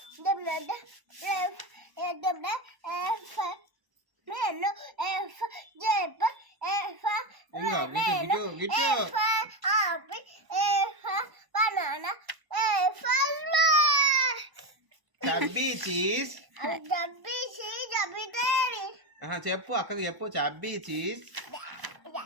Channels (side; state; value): left; late; 1.0 ms